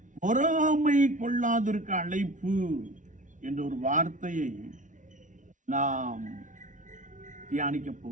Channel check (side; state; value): left; late; 0.37 ms